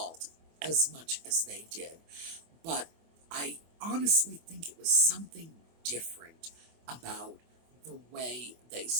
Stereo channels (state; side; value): late; left; 24 ms